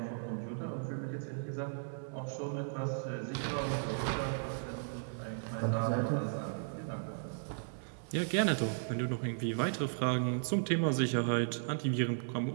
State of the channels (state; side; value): silent; left; digital silence